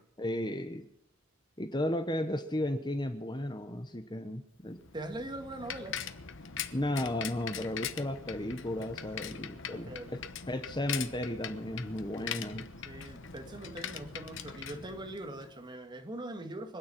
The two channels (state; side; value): normal; both; correlation 0.65